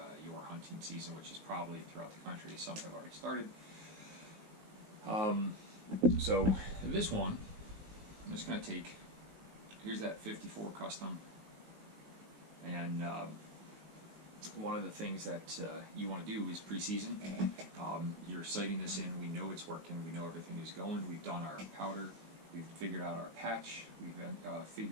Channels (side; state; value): left; late; 19 ms